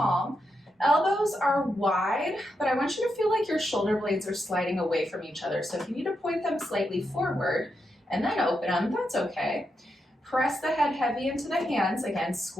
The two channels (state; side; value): normal; both; correlation 0.84